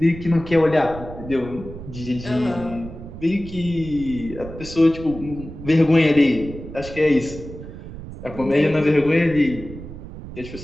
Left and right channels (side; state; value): right; noise; rumble, 13 dB below the sound